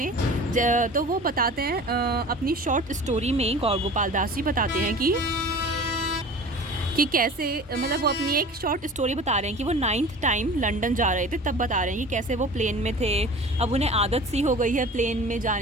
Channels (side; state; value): both; normal; correlation 0.40